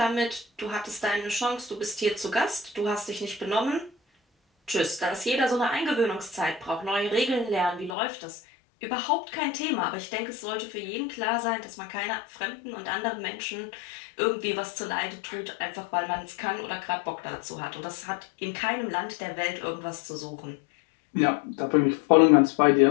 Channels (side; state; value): right; drops out; at 7.9 s